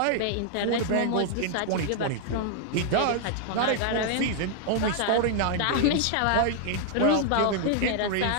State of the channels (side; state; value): both; different; correlation -0.01